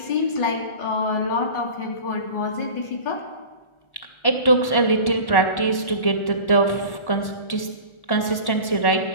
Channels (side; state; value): right; late; 1.1 ms